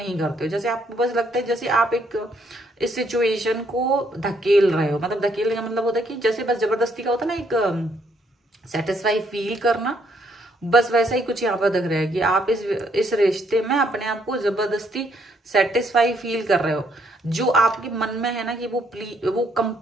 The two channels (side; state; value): both; normal; correlation 0.70